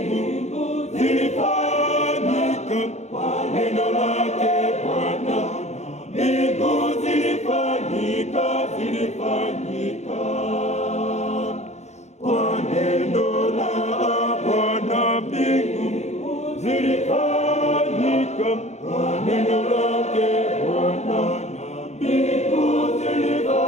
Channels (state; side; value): late; right; 0.33 ms